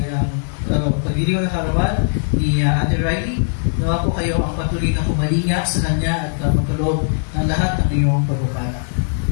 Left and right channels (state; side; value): silent; right; digital silence